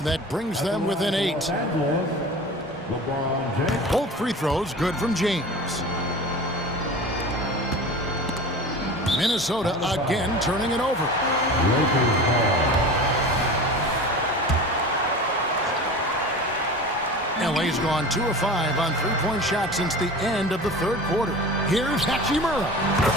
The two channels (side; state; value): both; normal; correlation 0.35